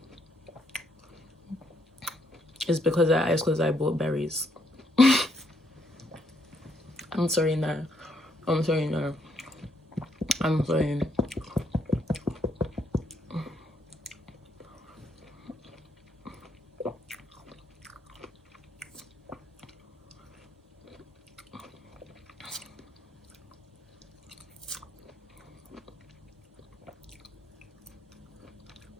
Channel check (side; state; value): both; normal; correlation 0.73